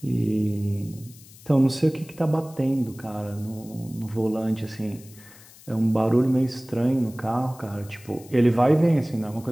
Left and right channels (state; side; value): noise; left; hiss, 22 dB below the sound